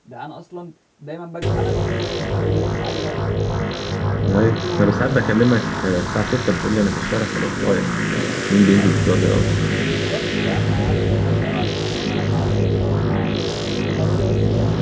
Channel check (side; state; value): both; identical; correlation 1.00